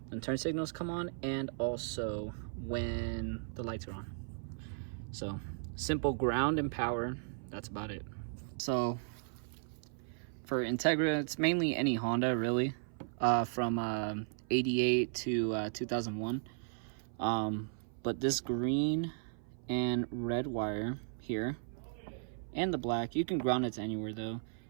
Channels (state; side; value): silent; left; 54 dB below the other